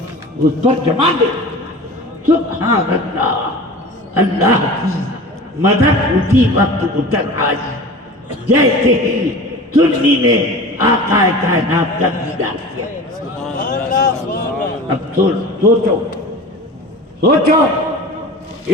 اس پر جما دے. سبحان اللہ، اللہ کی مدد اسی وقت اتر آئی جیسے ہی سنی نے آقا کائنات کا دیدار کیا. اب سوچو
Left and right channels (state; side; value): normal; both; correlation 0.36